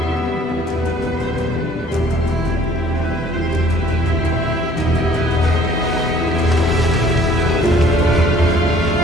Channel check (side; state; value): both; normal; correlation 0.56